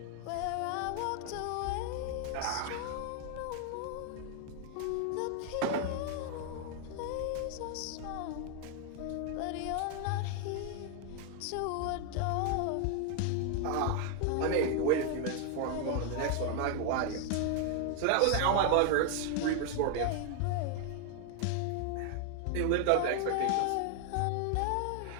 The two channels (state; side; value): different; both; correlation 0.00